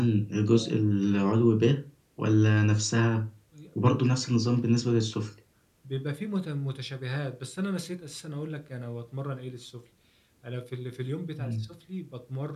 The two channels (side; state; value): both; identical; correlation 1.00